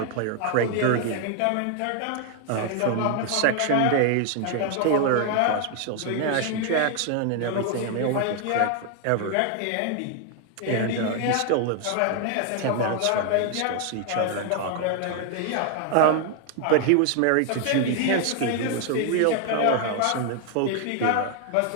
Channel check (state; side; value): different; both; correlation 0.00